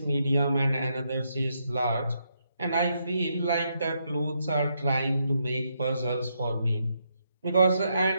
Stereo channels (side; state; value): both; inverted; correlation -0.78